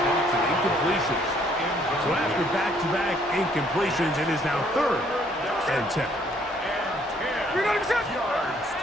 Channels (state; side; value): normal; both; correlation 0.65